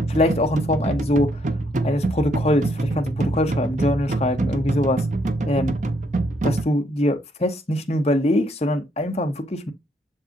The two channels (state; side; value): normal; both; correlation 0.71